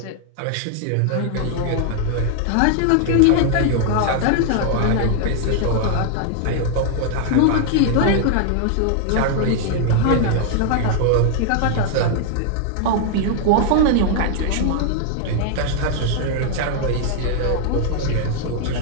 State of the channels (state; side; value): different; both; correlation 0.00